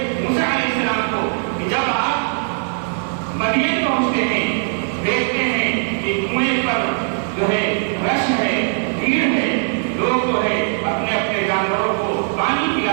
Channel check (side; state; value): left; silent; 66 dB below the other